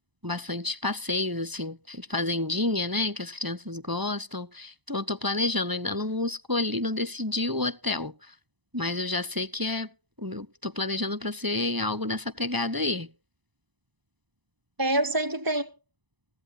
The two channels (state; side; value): late; left; 1.0 ms